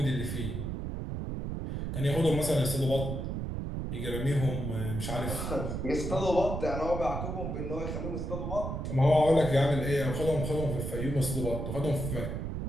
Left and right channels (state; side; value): noise; right; rumble, 4 dB below the sound